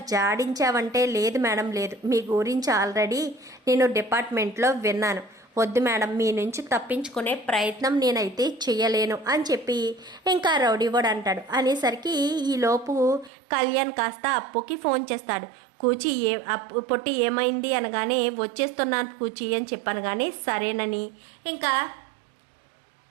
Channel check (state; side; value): drops out; left; at 13.3 s